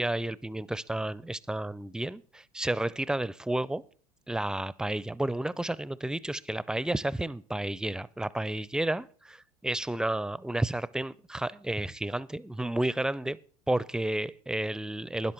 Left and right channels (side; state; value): both; normal; correlation 0.95